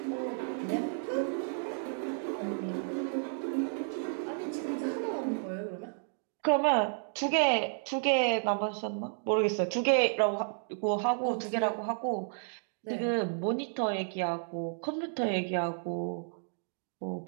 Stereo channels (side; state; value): left; silent; digital silence